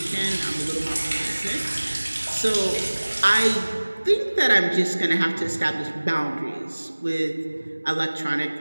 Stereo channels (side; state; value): both; inverted; correlation -1.00